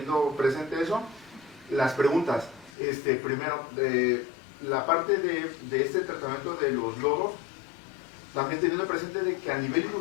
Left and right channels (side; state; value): right; drops out; at 2.7 s